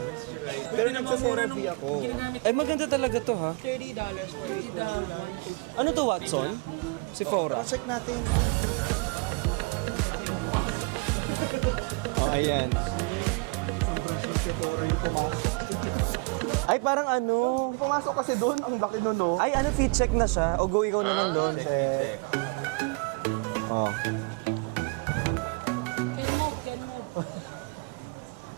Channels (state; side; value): quieter; left; 30.2 dB